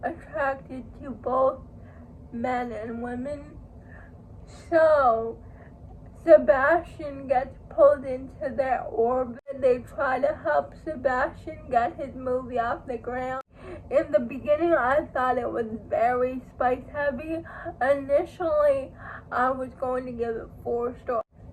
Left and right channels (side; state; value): both; identical; correlation 1.00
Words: attracted to both men and women. So Sebastian gets pulled into their orbit. They try to help Sebastian get his movie off the ground. In the beginning, I thought it was very spice heavy. Initially, I was going to give it 4 stars,